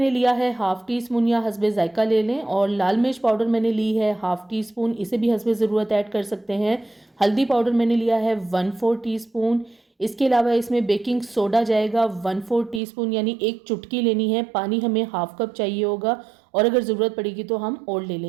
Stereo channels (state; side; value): drops out; left; at 12.8 s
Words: लिया है हाफ़ टी स्पून या हस्बे जायका ले लें और लाल मिर्च पाउडर मैंने ली है हाफ़ टी स्पून, इसे भी हस्बे ज़रूरत ऐड कर सकते हैं। हल्दी पाउडर मैंने लिया है 1/4 टीस्पून। इसके अलावा इसमें बेकिंग सोडा जाएगा 1/4 टीस्पून, यानी एक चुटकी लेनी है। पानी हमें हाफ़ कप चाहिए होगा और अगर ज़रूरत पड़ेगी तो हम और ले